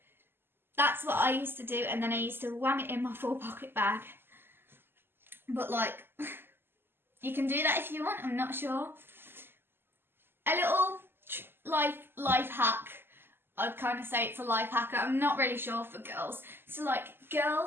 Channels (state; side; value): late; left; 0.11 ms